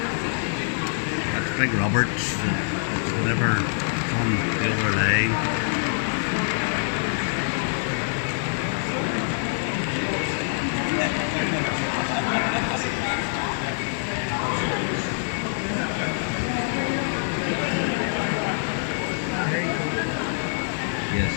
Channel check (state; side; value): silent; right; 62 dB below the other